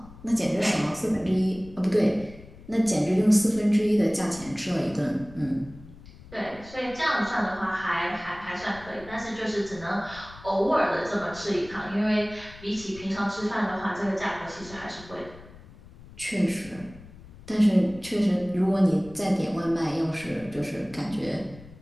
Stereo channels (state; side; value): noise; left; rumble, 19 dB below the sound